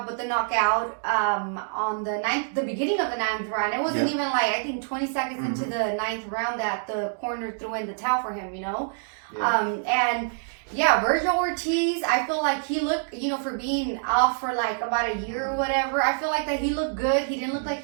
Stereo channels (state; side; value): silent; left; digital silence